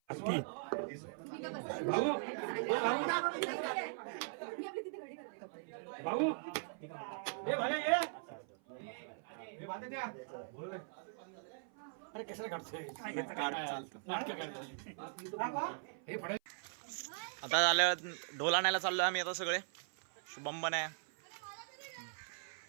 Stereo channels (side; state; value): left; silent; 51 dB below the other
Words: भाऊ ये भाई ये अरे कशाला काढतोय काढ, चालतं. नाटकं काढतोय. आता झालं ढोल आणायला चाललोय आम्ही आता सगळे. शुभम पण आहे,